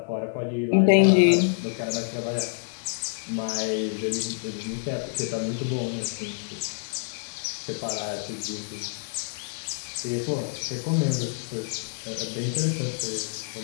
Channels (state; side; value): silent; right; digital silence